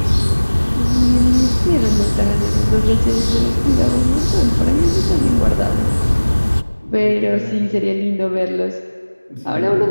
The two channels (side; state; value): both; inverted; correlation -1.00